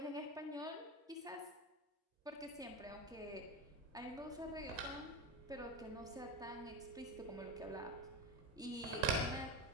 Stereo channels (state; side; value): normal; both; correlation 0.19